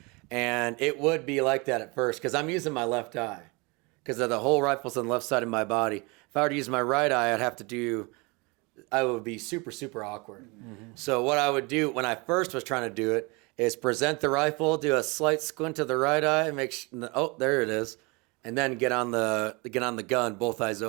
and it would be like that at first because I'm using my left eye because the whole rifle's on the left side of my body. If I were to use my right eye, I would be super, super awkward. So what I would do when I first was trying to do it is present the rifle, do a slight squint to the right eye, there it is, and then get on the gun, both eyes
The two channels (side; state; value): left; quieter; 28.0 dB